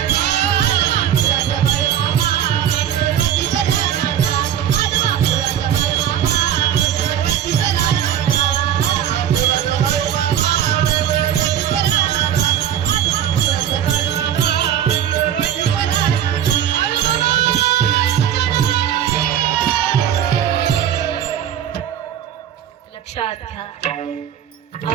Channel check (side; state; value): left; quieter; 10.0 dB